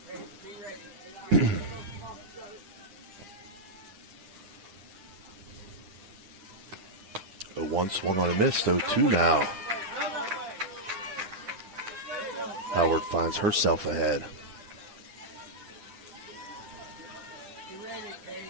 0-1 swung on and missed, 0-2 now. Howard finds herself ahead.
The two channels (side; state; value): left; late; 9.4 ms